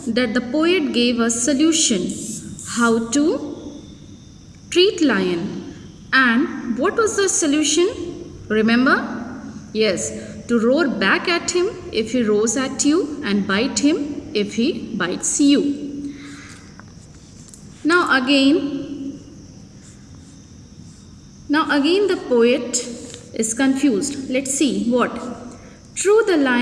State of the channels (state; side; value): identical; both; correlation 1.00